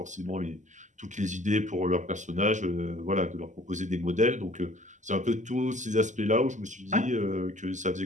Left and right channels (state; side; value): late; left; 0.35 ms